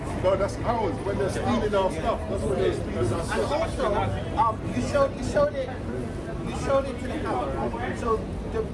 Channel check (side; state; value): both; identical; correlation 1.00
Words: No, that's ours. When they're stealing our stuff, that's when they're stealing our And stuff. also, you showed it to the camera. So the